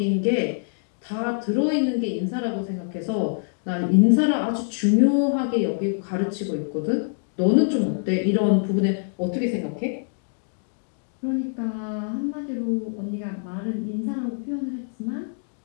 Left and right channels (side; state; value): right; silent; digital silence